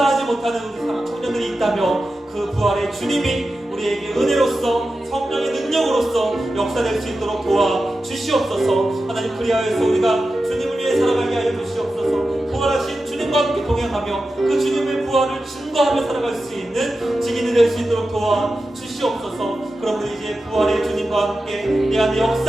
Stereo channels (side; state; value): both; normal; correlation 0.92